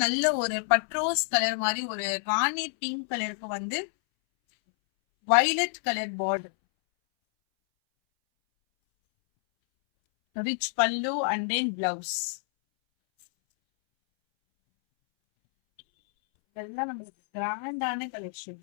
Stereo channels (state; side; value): silent; right; 59 dB below the other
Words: நல்ல ஒரு பட்ரோஸ் கலர் மாதிரி ஒரு ராணி பிங்க் கலருக்கு வந்து வயலட் கலர் பார்டர், ரிச் பல்லு அண்ட் தென் பிளவுஸ். இதெல்லாம் நம்மளுக்கு கிராண்டான